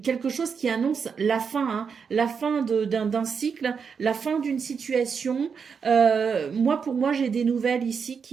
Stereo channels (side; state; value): left; quieter; 6.2 dB